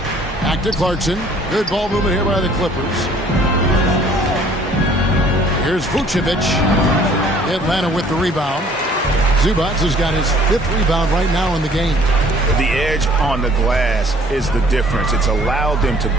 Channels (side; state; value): both; normal; correlation 0.56